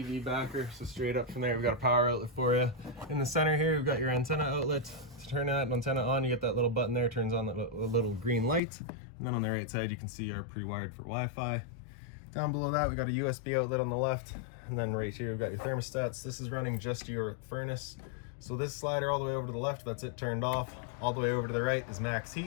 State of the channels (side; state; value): right; drops out; at 8.6 s